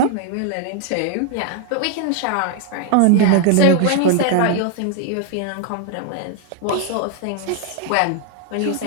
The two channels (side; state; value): both; different; correlation 0.00